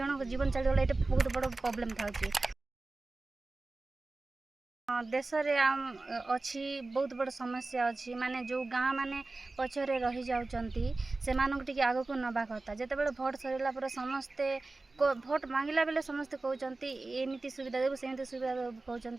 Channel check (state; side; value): quieter; left; 3.3 dB